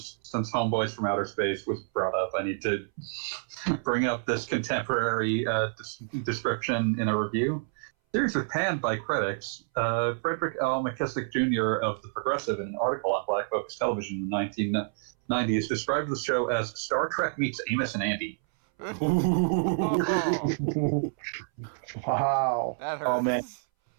Homeboys from Outer Space was brought up. I need to bring up this contemporary description in a review. The series was panned by critics. Frederick L. McKissick Jr. of The Progressive, in an article on Black Focus Television in the 1990s, described the show as Star Trek meets Amos and Andy. Oh, Wow. that hurts. Oh, man.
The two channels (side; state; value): left; silent; 59 dB below the other